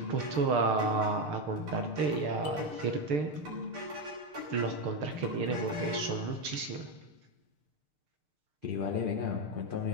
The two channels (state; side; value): late; left; 6.7 ms